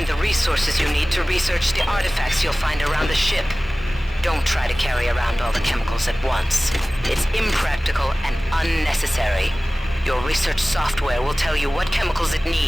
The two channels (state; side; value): normal; both; correlation 0.98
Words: Resources you need to research the artifacts you'll find around the ship. Don't try to carry around all the chemicals at once. It's impractical and unnecessary. Your research software will tell you what chemicals it